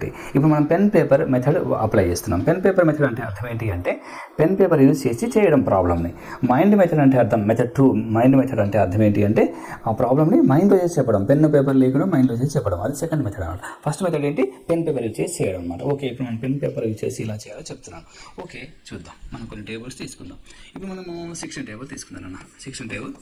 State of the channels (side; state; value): both; identical; correlation 1.00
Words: ఇప్పుడు మనం పెన్ పేపర్ మెథడ్ అప్లై చేస్తున్నాం. పెన్ పేపర్ మెథడ్ అంటే అర్థం ఏంటి అంటే పెన్ పేపర్ యూజ్ చేసి చేయడం ప్రాబ్లమ్ని. మైండ్ మెథడ్ అంటే అర్థం, మెథడ్ 2 మైండ్ మెథడ్ అంటే అర్థం ఏంటి అంటే ఆ ప్రాబ్లమ్ని మైండ్లో చేసి చెప్పడం, పెన్ పేపర్ లేకుండా మైండ్లో చేసి చెప్పడం. అది సెకండ్ మెథడ్ అనమాట. ఫస్ట్ మెథడ్ ఏంటి, పెన్ పేపర్ యూజ్ చేసి చేయడం అనమాట. ఓకే, ఇప్పుడు మనం పెన్ పేపర్ యూజ్ చేసి ఇలా చేయాలో చెప్తున్నాను. ఓకే, చూద్దాం. మనం కొన్ని టేబుల్స్ తీసుకుందాం. ఇప్పుడు మనము 16 టేబుల్ తీసుకుందాం అన్న. 16 టేబుల్